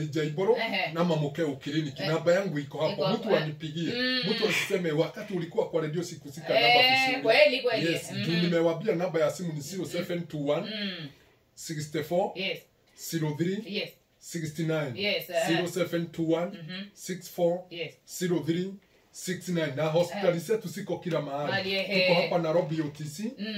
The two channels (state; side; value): identical; both; correlation 1.00